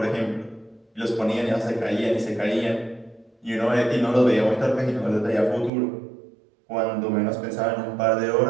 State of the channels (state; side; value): drops out; left; at 5.7 s